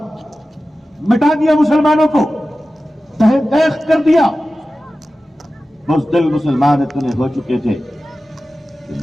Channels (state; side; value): normal; both; correlation 0.95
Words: مٹا دیا مسلمانوں کو، تہے دیکھ کر دیا۔ بزدل مسلمان اتنے ہو چکے تھے